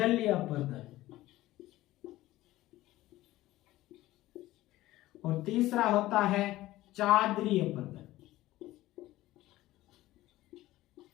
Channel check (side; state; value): right; quieter; 16.5 dB